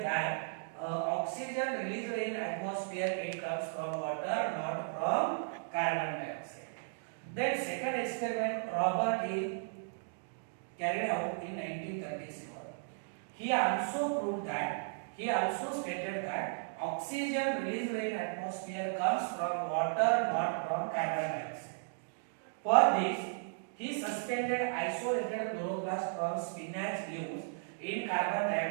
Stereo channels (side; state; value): left; silent; digital silence